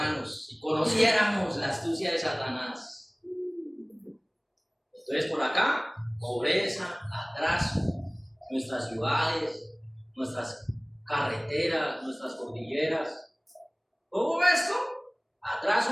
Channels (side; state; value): both; identical; correlation 1.00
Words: si conociéramos la astucia de Satanás. Entonces, por acá, pobreza, atraso, nuestras ciudades, nuestras carreteras, nuestras cordilleras. Todo esto,